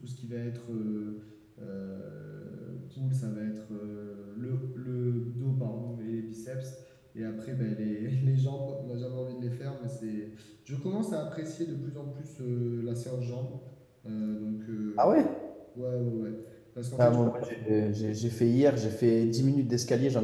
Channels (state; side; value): identical; both; correlation 1.00